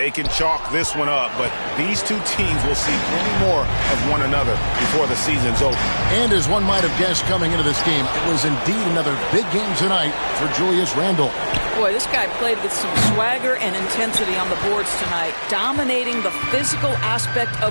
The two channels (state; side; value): inverted; both; correlation -1.00